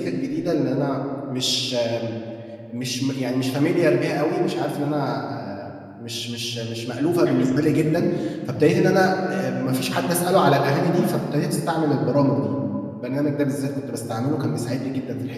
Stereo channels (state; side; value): identical; both; correlation 1.00